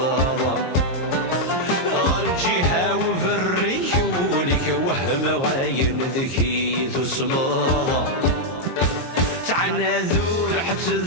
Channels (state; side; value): late; right; 22 ms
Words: الجهة وبالريك ولك وهم غاين ذكيت وسماضة تعنا ذور حتى